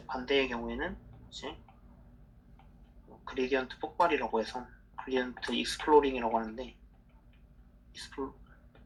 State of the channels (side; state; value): both; identical; correlation 1.00